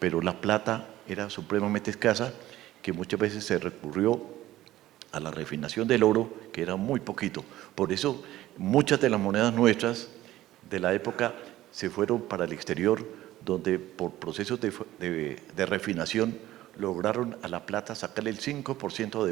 la plata era supremamente escasa, que muchas veces se recurrió a la refinación del oro, que era muy poquito. Por eso muchas de las monedas nuestras de la época se fueron para el exterior, donde por procesos de refinación lograron a la plata sacarle el 5%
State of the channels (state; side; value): quieter; left; 15.0 dB